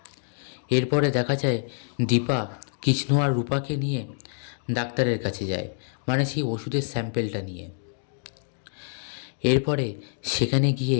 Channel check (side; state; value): right; silent; digital silence